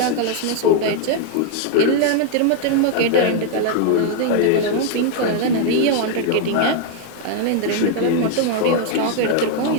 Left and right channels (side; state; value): both; different; correlation 0.00